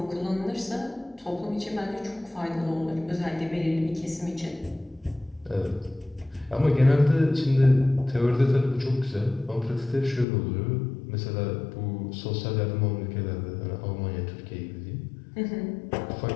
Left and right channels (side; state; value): right; drops out; at 10.2 s